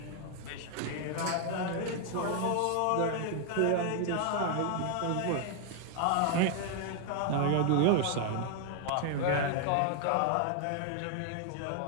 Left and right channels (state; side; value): different; both; correlation 0.00